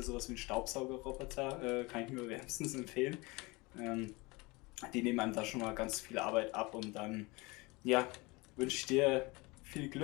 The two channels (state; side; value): quieter; right; 24.8 dB